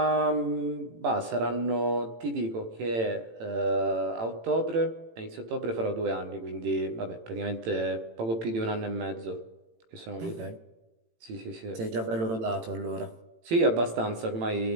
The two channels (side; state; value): left; late; 18 ms